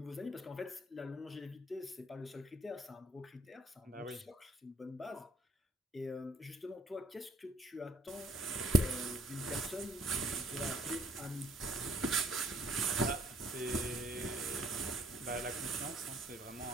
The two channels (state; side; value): normal; both; correlation 0.62